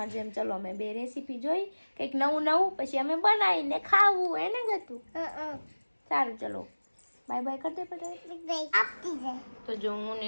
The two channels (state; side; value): inverted; both; correlation -1.00